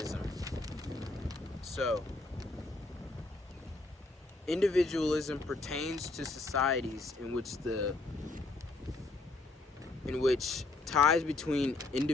So individualism pertains to societies in which ties between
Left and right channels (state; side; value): quieter; right; 3.3 dB